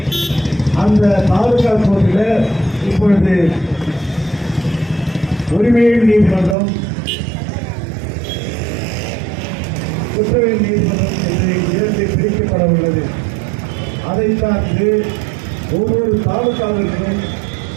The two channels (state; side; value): drops out; left; at 6.6 s